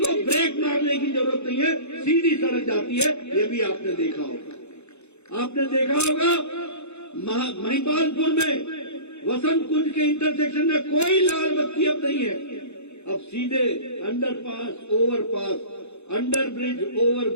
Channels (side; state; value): right; late; 0.81 ms